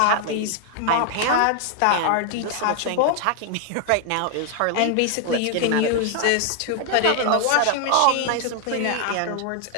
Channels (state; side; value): different; both; correlation 0.00